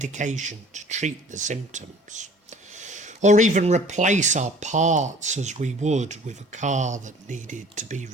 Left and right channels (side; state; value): both; normal; correlation 0.50